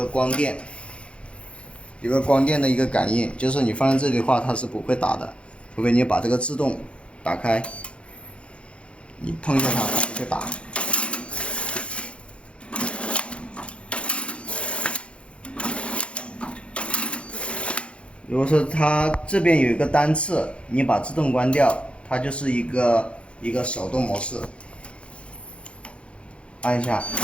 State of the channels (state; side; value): late; right; 0.059 ms